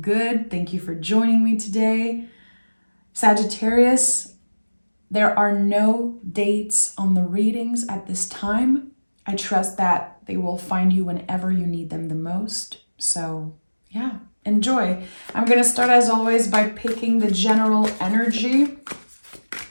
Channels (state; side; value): inverted; both; correlation -1.00